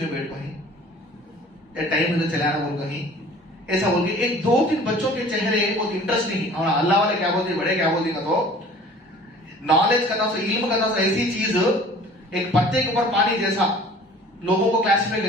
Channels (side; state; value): both; normal; correlation 0.47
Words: में बैठ पाए, टाइम में चलाना बोल कहीं ऐसा बोल के, एक 2-3 बच्चों के चेहरे बहुत इंटरेस्ट नहीं। और अल्लाह वाले क्या बोलते, बड़े क्या बोलते, तो नॉलेज का था, इल्म का था, ऐसी चीज एक पत्ते के ऊपर पानी जैसा लोगों को क्लासिफाई